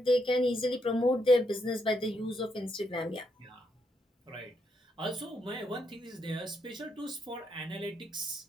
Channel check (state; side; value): normal; both; correlation 0.78